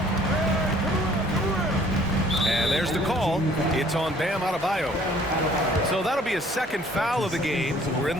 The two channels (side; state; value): both; normal; correlation 0.57